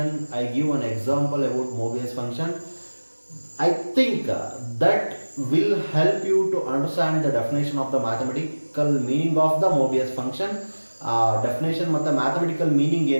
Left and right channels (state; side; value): inverted; both; correlation -1.00